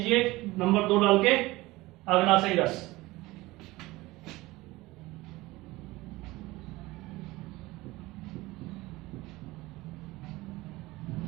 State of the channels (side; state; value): left; quieter; 19.9 dB